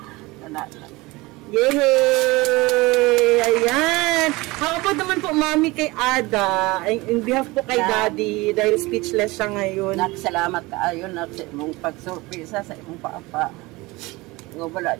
talaga. Yay! Ayan! How about naman po, Mami, kay Ada, in behalf po kay Daddy, dahil speechless siya ngayon. Salamat kaayo na sa imong pagsurpresa sa imong papa. Nga wala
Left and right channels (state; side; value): quieter; left; 22.2 dB